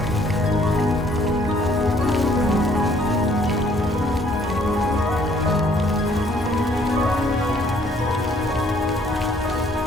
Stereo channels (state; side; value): normal; both; correlation 0.62